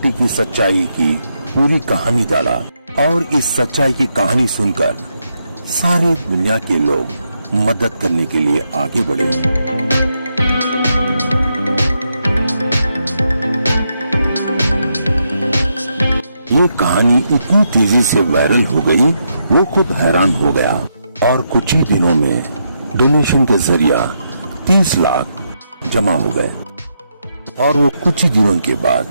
की सच्चाई की पूरी कहानी डाला। और इस सच्चाई की कहानी सुनकर सारे दुनिया के लोग मदद करने के लिए आगे बढ़े। ये कहानी इतनी तेजी से वायरल हो गई, वो खुद हैरान हो गया और कुछ ही दिनों में डोनेशन के जरिया 30 लाख जमा हो गए। और वो कुछ ही दिनों के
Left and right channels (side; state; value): both; inverted; correlation -0.81